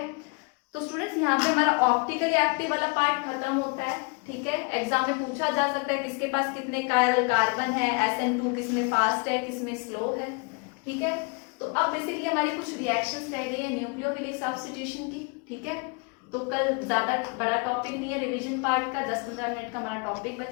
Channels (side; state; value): right; quieter; 32.4 dB